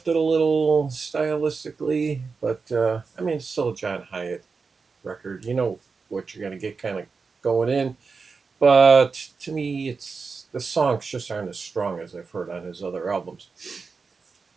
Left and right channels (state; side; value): quieter; left; 4.8 dB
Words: a little stylistically, but I mean, it's still a John Hyatt record. You know what you're going to get kind of going in. But to me, it's the songs just aren't as strong as I've heard on his other albums.